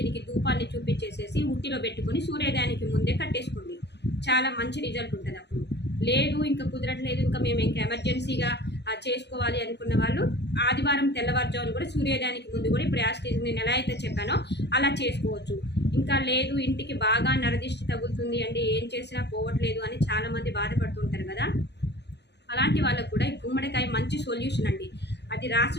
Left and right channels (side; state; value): right; late; 0.50 ms